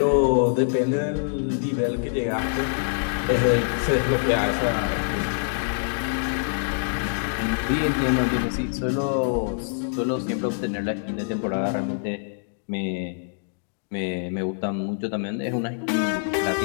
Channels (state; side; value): silent; right; digital silence